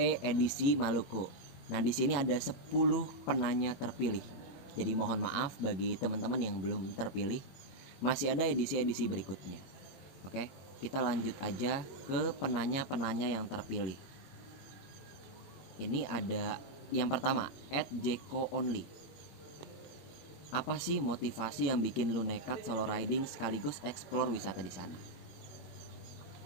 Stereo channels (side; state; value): right; late; 22 ms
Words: edisi Maluku. Nah, di sini ada 10 penanya terpilih. Jadi mohon maaf bagi teman-teman yang belum terpilih. Masih ada edisi-edisi berikutnya. Oke, kita lanjut aja ke penanya-penanya yang terpilih. Ini ada yang pertama, @jeko_only. Apa sih motivasi yang bikin lu nekat solo riding sekaligus explore wisata di sana?